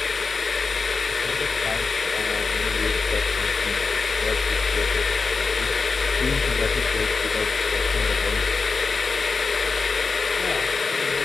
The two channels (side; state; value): right; quieter; 4.5 dB